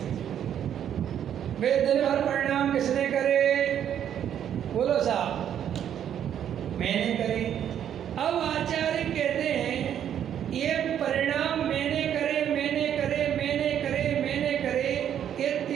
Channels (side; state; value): left; quieter; 9.7 dB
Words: वे दिन भर परिणाम किसने करे? बोलो साहब, मैंने करे। अब आचार्य कहते हैं ये परिणाम मैंने करे, मैंने करे, मैंने करे, मैंने करे, ये